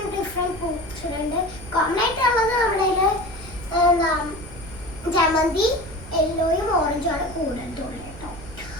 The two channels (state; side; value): noise; right; rumble, 15 dB below the sound